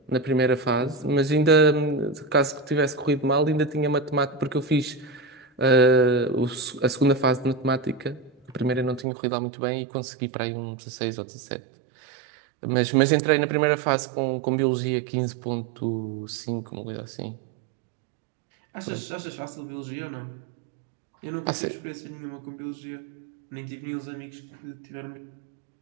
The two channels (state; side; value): drops out; left; at 9.1 s